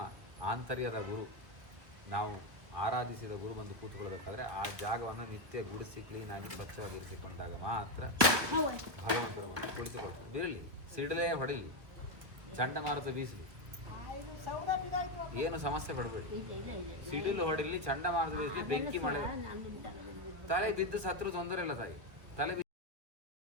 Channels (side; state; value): left; late; 1.7 ms